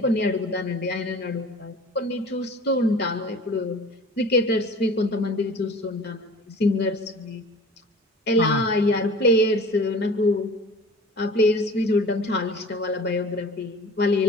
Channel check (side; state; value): both; normal; correlation 0.42